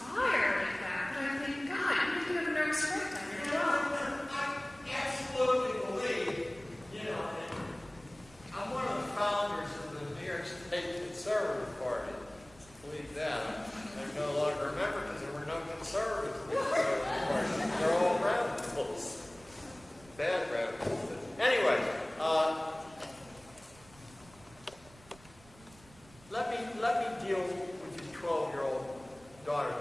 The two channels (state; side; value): noise; right; rumble, 24 dB below the sound